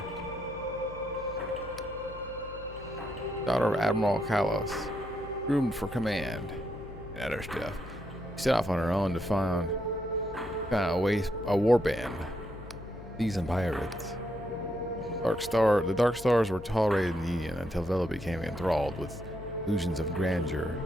Daughter of Admiral Kalos, groomed for command and other stuff. She set off on her own to find a war band, seasoned pirates. The Dark Stars were tolerated in the Union until Vela became enthralled with illusions of grandeur,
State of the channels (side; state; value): left; noise; hum, 15 dB below the sound